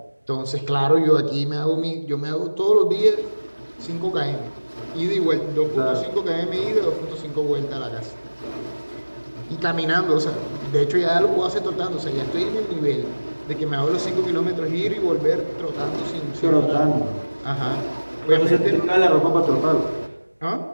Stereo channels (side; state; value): both; inverted; correlation -1.00